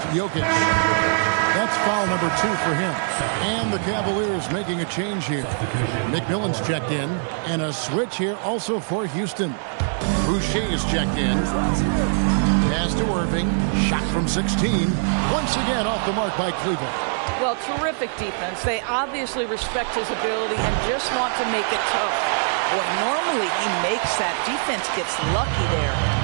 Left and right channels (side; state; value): left; silent; digital silence